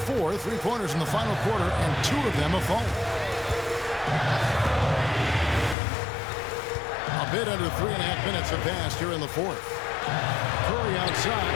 4 3-pointers in the final quarter, and 2 of them have fallen. A bit under 3.5 minutes have passed here in the 4th. Curry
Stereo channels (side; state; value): right; drops out; at 5.8 s